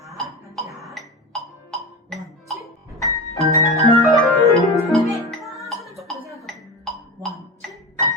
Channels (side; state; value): both; normal; correlation 0.26